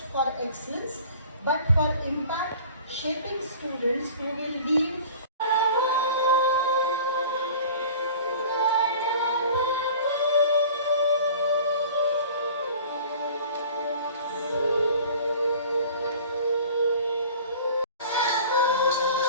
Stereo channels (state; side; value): inverted; both; correlation -0.44